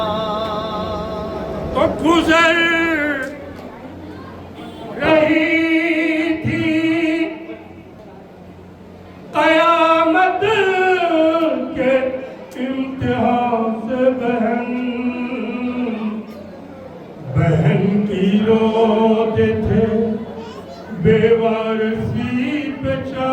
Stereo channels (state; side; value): identical; both; correlation 1.00